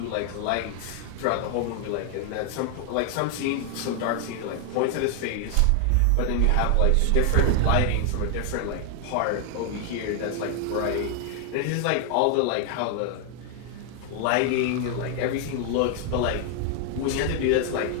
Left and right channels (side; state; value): both; different; correlation 0.00